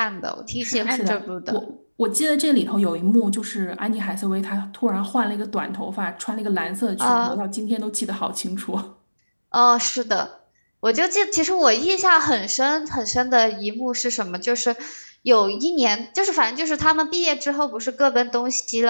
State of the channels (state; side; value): inverted; both; correlation -1.00